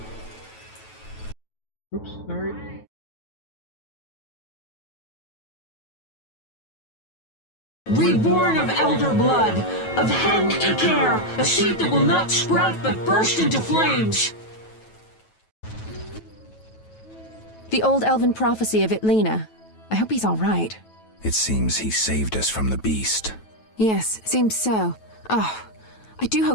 Oops, sorry. Reborn of elder blood, of Hen Iker, a seed that will not sprout but burst into flames. The old elven prophecy of Itlena. I hope he's all right. It seems he saved us from the beast. Yes, seems so. Oh, I do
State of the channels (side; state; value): right; late; 9.2 ms